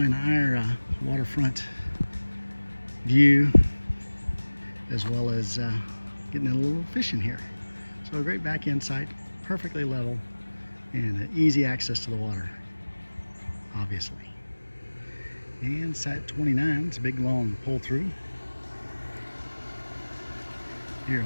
our waterfront view, as well as getting a little fishing here. So a great back end site, perfectly level, and easy access to the water, obviously. And site 29, it's a big long pull through here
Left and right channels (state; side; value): inverted; both; correlation -1.00